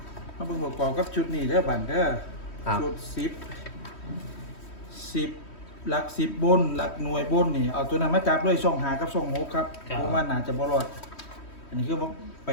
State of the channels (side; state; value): right; late; 3.1 ms